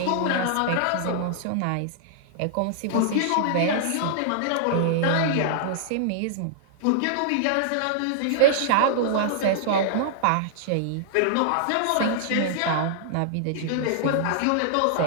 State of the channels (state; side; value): different; both; correlation -0.01